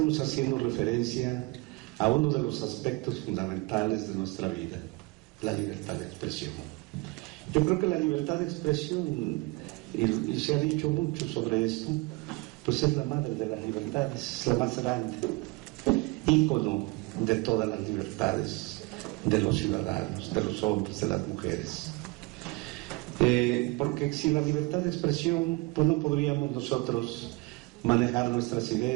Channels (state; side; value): quieter; left; 24.7 dB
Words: haciendo referencia a uno de los aspectos fundamentales de nuestra vida, la libertad de expresión. Yo creo que la libertad de expresión, y se ha dicho mucho sobre esto, pues es la madre de las libertades, es la más grande, ícono de todas las libertades de los ciudadanos, de los hombres, de las mujeres. Porque sin la libertad de expresión, pues no podríamos nosotros manejar nuestras